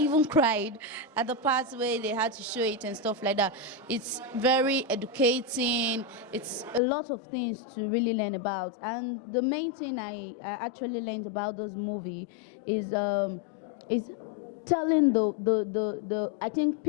cried at the parts where they had to show it and stuff like that. It's very educating. It's a lot of things to really learn about. And the main thing I actually learned about this movie is telling I think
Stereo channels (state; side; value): drops out; right; at 6.8 s